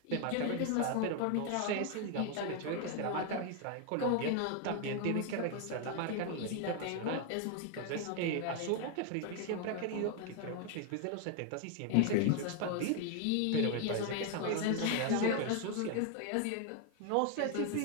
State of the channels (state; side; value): different; both; correlation 0.01